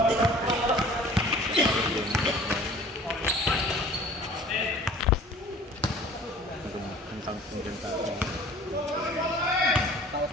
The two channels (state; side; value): normal; both; correlation 0.48